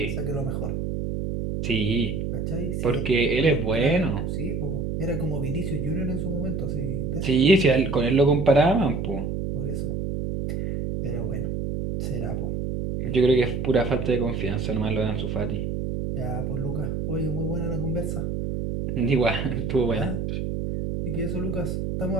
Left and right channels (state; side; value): noise; right; hum, 2 dB below the sound